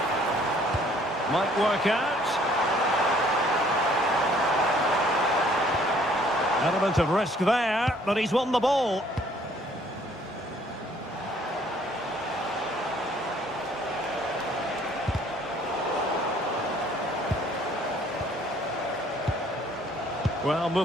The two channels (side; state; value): both; normal; correlation 0.60